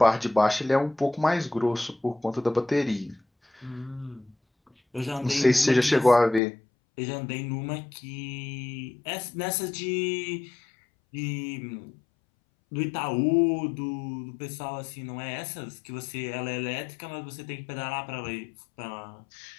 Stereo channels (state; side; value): drops out; right; at 6.4 s